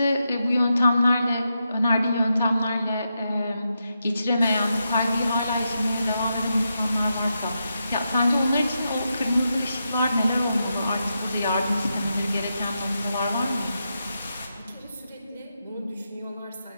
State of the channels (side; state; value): both; inverted; correlation -0.86